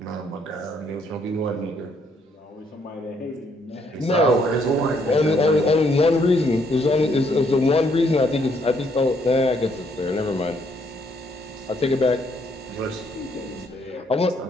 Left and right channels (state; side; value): normal; both; correlation 0.70